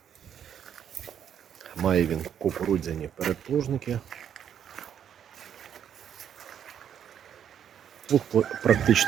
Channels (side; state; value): left; quieter; 9.0 dB